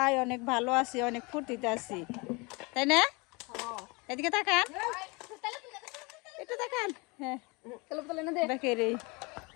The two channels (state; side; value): quieter; right; 27.6 dB